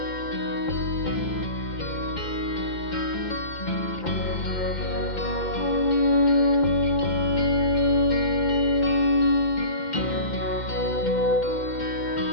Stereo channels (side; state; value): right; late; 2.1 ms